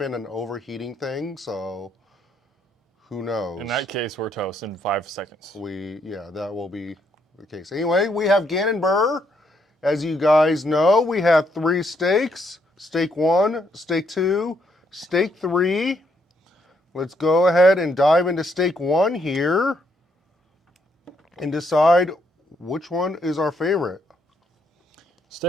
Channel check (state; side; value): normal; both; correlation 0.74